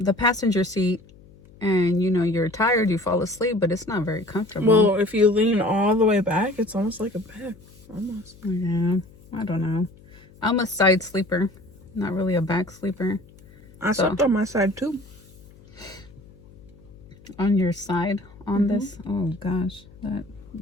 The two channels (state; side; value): noise; left; hum, 24 dB below the sound